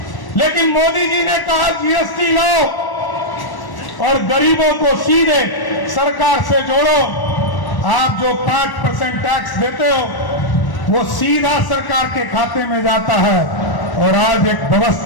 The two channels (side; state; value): right; late; 1.1 ms